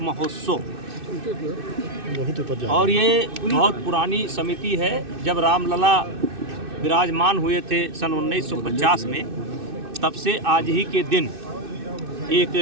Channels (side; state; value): left; late; 2.6 ms